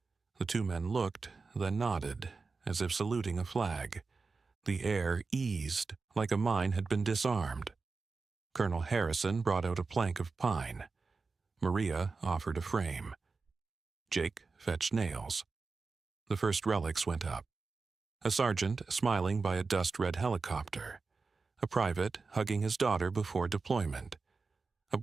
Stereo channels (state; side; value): quieter; left; 4.3 dB